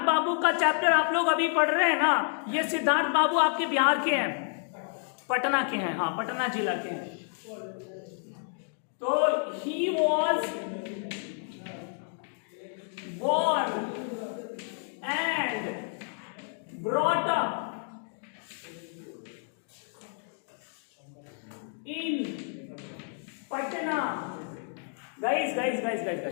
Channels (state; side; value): silent; right; 55 dB below the other